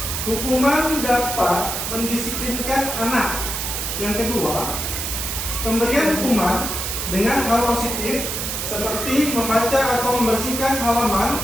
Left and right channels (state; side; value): noise; right; hiss, 3 dB below the sound